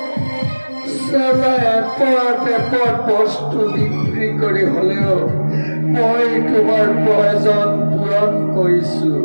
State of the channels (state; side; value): inverted; both; correlation -1.00